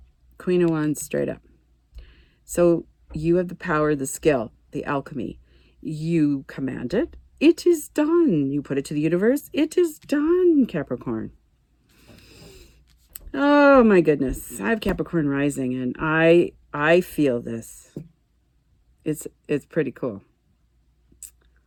Queen of Wands straight up. So you have the power, the skill, the alchemy. You command it. It is done. You put it to the universe. It is done, Capricorn. Oh my goodness. I have Capricorn rising and I feel this. It's pretty cool.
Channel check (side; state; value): both; identical; correlation 1.00